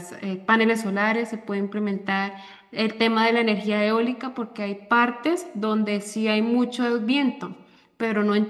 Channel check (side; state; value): both; identical; correlation 1.00